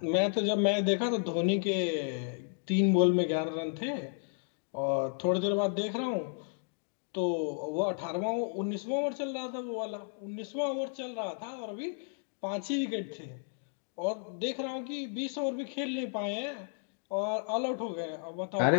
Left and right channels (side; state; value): right; silent; 56 dB below the other